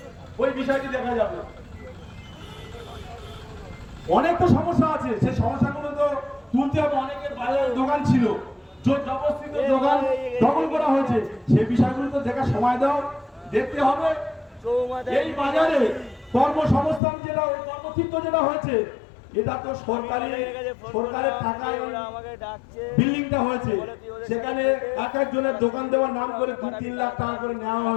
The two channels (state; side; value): drops out; right; at 17.0 s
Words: ওই বিষয়টি দেখা যাবে। অনেক তো সমস্যা আছে, সেই সমস্যাগুলো তো তুলতে হবে। অনেকের বাজারে দোকান ছিল, জোর জবরদস্তিতে দোকান দখল করা হয়েছে, সেই বিষয়গুলো তো দেখার সময় দাও, দেখতে হবে। এই বাজারে কর্মসংস্থান যেটা, ওই কর্মক্ষেত্র যেটা হয়েছে, এটা তো সরকারের টাকায় বিল্ডিংটা হয়েছে, সেখানে এক একজনের দোকান দেওয়ার নাম করে 2-3 লাখ টাকা করে নেওয়া